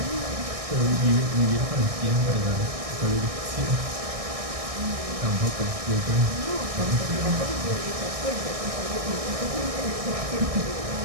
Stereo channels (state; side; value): late; left; 1.6 ms